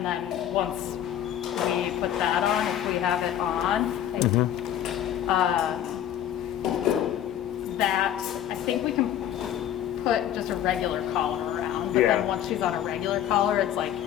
then once we put that on, if we have it on. That I think we can put just a regular collar around, but then once she's on a regular collar, it's like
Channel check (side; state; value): right; quieter; 10.8 dB